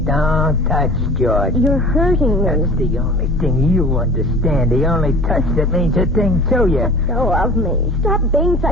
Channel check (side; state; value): both; normal; correlation 0.41